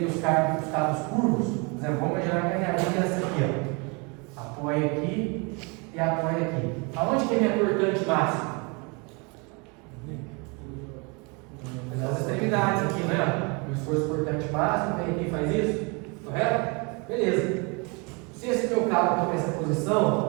os cabos curvos, por exemplo, vamos imaginar que a minha linha é essa aqui, ó. Apoia aqui e apoia aqui. Aonde que é minha cortante máxima? Nas extremidades aqui, né? O esforço cortante máximo, vem aqui e faz isso, correto? Beleza. Se esse meu cabo está nessa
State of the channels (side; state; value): left; quieter; 30.9 dB